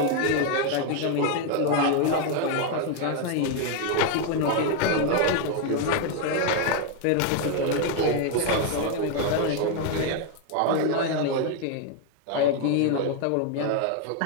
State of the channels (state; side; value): different; both; correlation 0.01